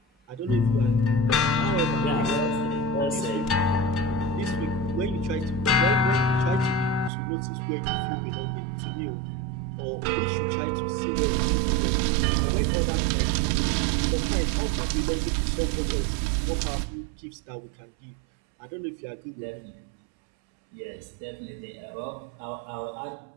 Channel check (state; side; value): drops out; left; at 7.1 s